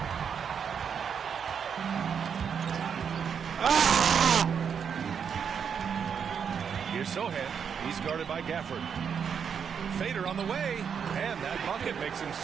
Here's Sohan. He's guarded by Gafford. Fader on the way, and that bucket makes him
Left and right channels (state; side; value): quieter; left; 7.1 dB